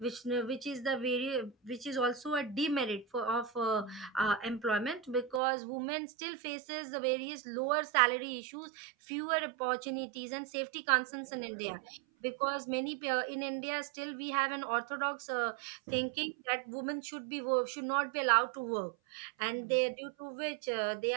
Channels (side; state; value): left; drops out; at 5.4 s